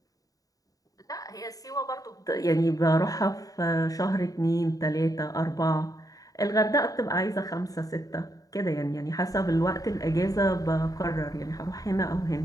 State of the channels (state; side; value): late; right; 0.17 ms